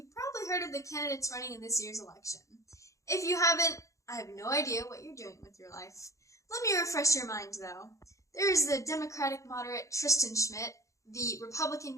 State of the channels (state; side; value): late; right; 0.15 ms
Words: probably heard of the candidates running in this year's election. If you haven't, I have no idea what you're doing with your life. Let me refresh your mind, though. There is the Democratic moderate Tristan Schmidt, the